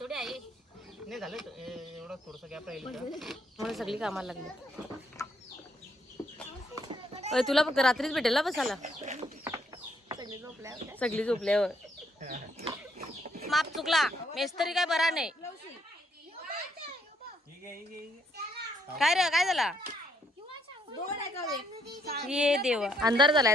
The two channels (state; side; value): normal; both; correlation 0.72